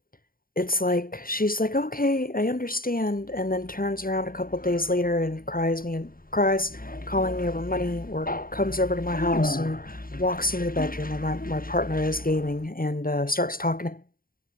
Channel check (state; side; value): late; right; 0.42 ms